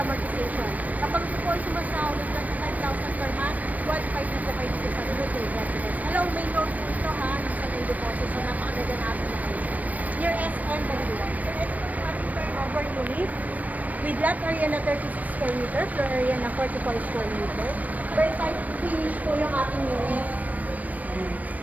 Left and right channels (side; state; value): left; late; 0.074 ms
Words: Kapag po sumasahod ng 5,000 per month, 1.5 na po kayo dito sa Beauty Residence. Hello, may loan po ito ha, ng sa may deposit. So, napakaganda natin na kayo. Near SM Bangulan. So, ito po yung ating turnover unit with lot area na 36 square meter, floor area na 44 square meter. Very tight finish po yung ating unit.